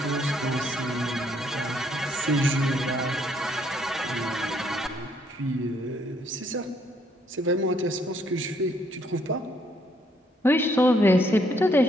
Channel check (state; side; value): normal; both; correlation 0.69